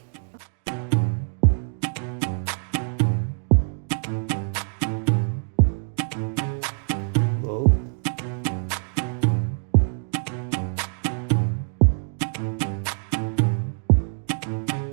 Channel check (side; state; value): left; silent; digital silence